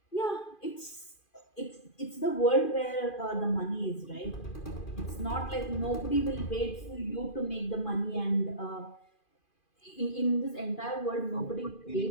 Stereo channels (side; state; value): right; late; 2.4 ms